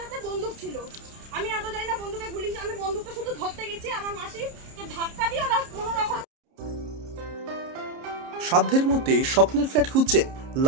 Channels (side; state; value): left; late; 30 ms